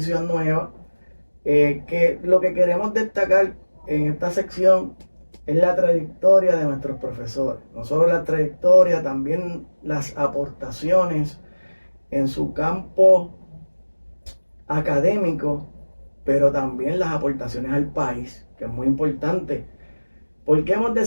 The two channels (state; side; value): inverted; both; correlation -1.00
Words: nueva, que lo que queremos destacar en esta sección es la trayectoria de nuestros profesores. No solo la trayectoria, también las aportaciones en su campo académico, pero también las aportaciones al país, que es muy importante. ¿Por qué hemos